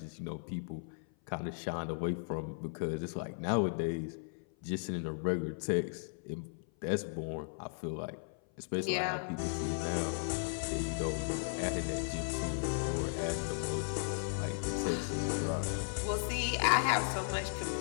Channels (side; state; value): right; silent; 54 dB below the other